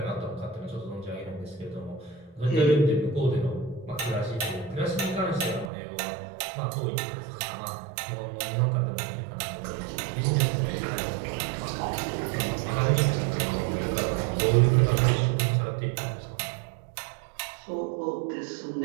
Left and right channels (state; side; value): drops out; left; at 5.7 s